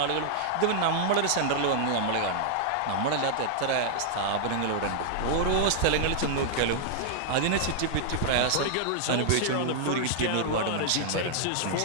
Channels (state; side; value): different; both; correlation -0.01